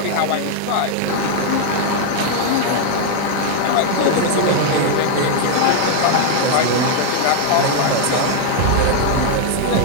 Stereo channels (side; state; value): both; different; correlation 0.00